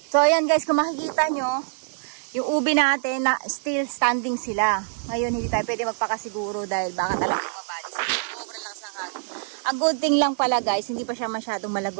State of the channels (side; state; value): left; silent; digital silence